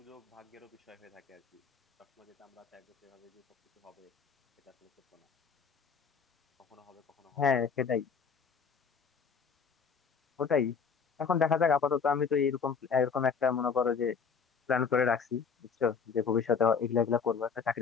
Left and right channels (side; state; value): right; quieter; 6.0 dB